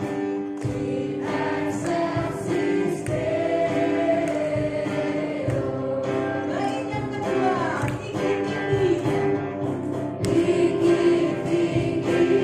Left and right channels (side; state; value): both; identical; correlation 1.00